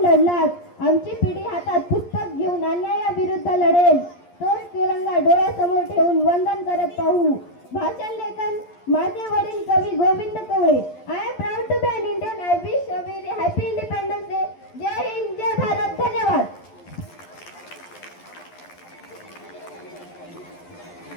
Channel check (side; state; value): right; late; 11 ms